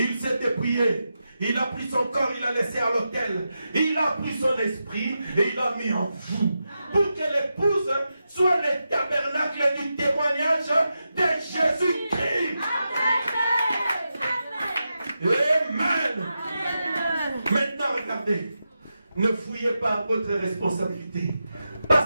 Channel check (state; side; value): inverted; both; correlation -0.89